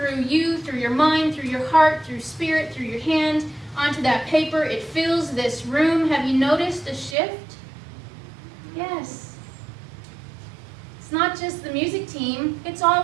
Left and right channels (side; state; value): left; drops out; at 7.2 s